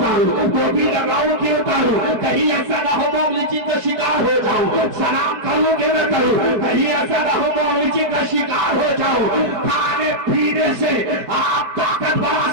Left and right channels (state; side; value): late; left; 4.7 ms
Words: टोपी लगाऊं कि उतारूं, कहीं ऐसा ना हो मौलिची का शिकार हो जाऊं, सलाम करूं कि न करूं, कहीं ऐसा ना हो मौलिची का शिकार हो जाऊं। खाने पीने से आप ताकत बढ़ा